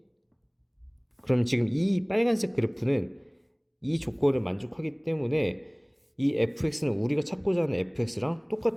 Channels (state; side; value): identical; both; correlation 1.00